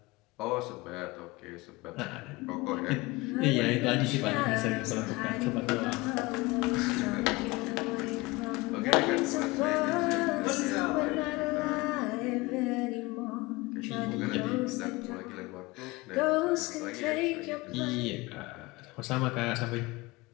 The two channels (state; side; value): quieter; right; 22.5 dB